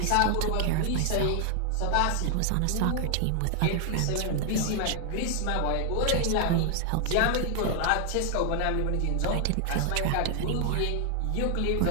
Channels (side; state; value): both; different; correlation 0.00